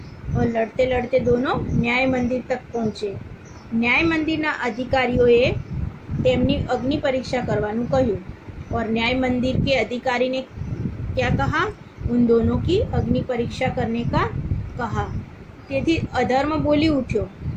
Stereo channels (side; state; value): both; identical; correlation 1.00